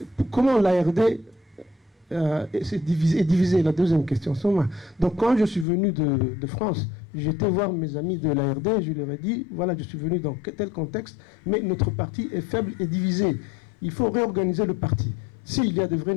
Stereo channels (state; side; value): drops out; right; at 5.7 s